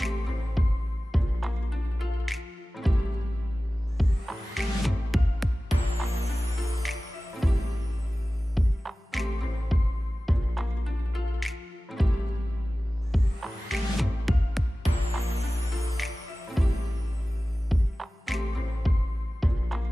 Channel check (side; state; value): both; normal; correlation 0.96